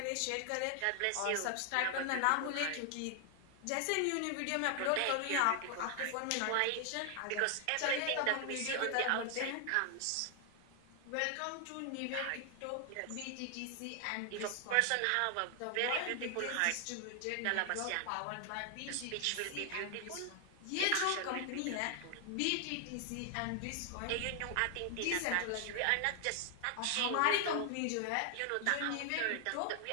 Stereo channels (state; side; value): different; both; correlation 0.00